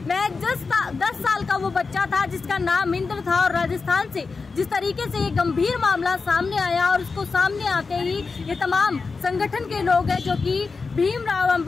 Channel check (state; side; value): quieter; right; 4.5 dB